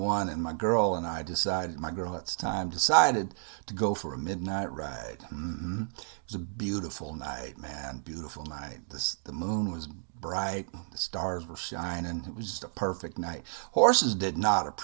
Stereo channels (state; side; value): silent; left; digital silence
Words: and my girl and I decided, my girl at the time decided to go for a midnight ride. It was a beautiful night, man, beautiful night. The moon was bright, the stars were shining. It was just a perfect night. Horses did not